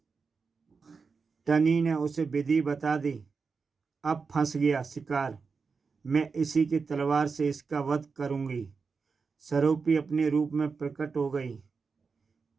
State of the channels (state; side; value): quieter; left; 5.0 dB